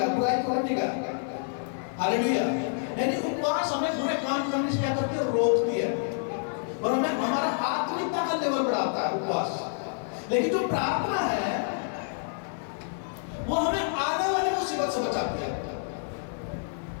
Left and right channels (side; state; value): right; silent; digital silence